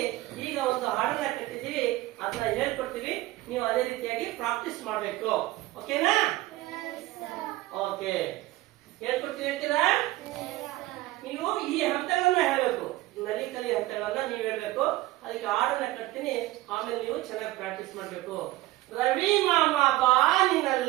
ಈಗ ಒಂದು ಹಾಡನ್ನ ಕಟ್ಟಿದ್ದೀವಿ, ಅದನ್ನ ಹೇಳ್ಕೊಡ್ತೀವಿ. ನೀವು ಅದೇ ರೀತಿಯಾಗಿ ಪ್ರಾಕ್ಟೀಸ್ ಮಾಡ್ಬೇಕು. ಓಕೆನಾ? ಓಕೆ, ಹೇಳ್ಕೊಡ್ತೀವಿ. ಹೇಳ್ತೀರಾ? ನೀವು ಈ ಹಂತಗಳನ್ನ ಹೇಳ್ಬೇಕು, ನಲಿಕಲಿ ಹಂತಗಳನ್ನ ನೀವು ಹೇಳ್ಬೇಕು. ಅದಕ್ಕೆ ಹಾಡನ್ನ ಕಟ್ತೀನಿ, ಆಮೇಲೆ ನೀವು ಚೆನ್ನಾಗಿ ಪ್ರಾಕ್ಟೀಸ್ ಮಾಡ್ಬೇಕು. ರವಿ ಮಾಮ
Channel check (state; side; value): quieter; left; 17.9 dB